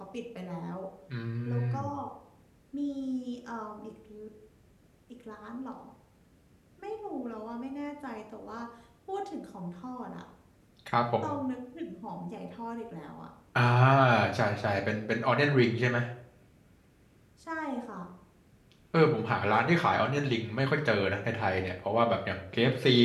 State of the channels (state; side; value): identical; both; correlation 1.00